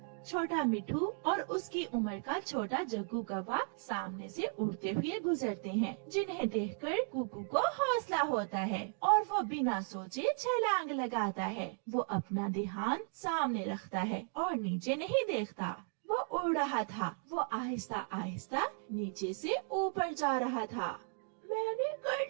छोटा मिठू और उसकी उम्र का छोटा जग्गू कौवा सामने से उड़ते हुए गुजरते हैं, जिन्हें देखकर कुकू को हौसला होता है और वो बिना सोचे छलांग लगाता है। वो अपना ध्यान सामने रखता है और नीचे नहीं देखता। वो उड़ रहा था। वो आहिस्ता आहिस्ता नीचे से ऊपर जा रहा था। मैंने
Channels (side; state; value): left; silent; 54 dB below the other